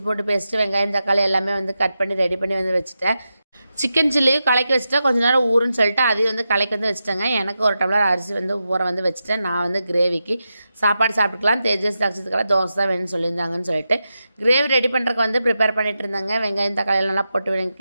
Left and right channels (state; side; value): inverted; both; correlation -0.89